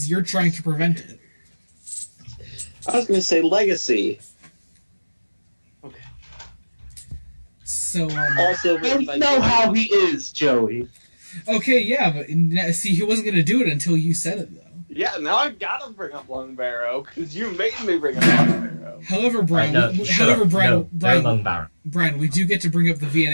you're trying to prevent it. I was gonna say Legacy. Okay. So, Also, I don't know how he is, Joey. okay, yeah, but see, he wasn't gonna do it until you said it, though. Yeah, now I've got to bring up Lung Barrow because you made me bring up Lung Barrow. However, Brian, Brian, we do get to bring up the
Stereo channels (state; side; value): inverted; both; correlation -1.00